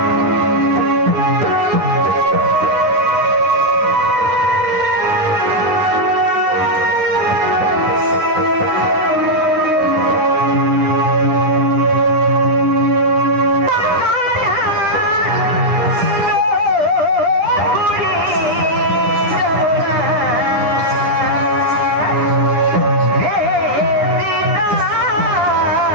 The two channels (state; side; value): late; left; 10 ms